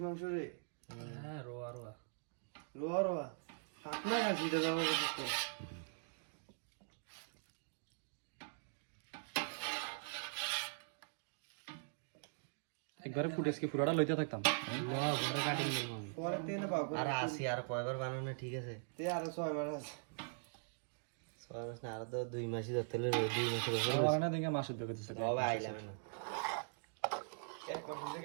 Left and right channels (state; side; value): silent; left; digital silence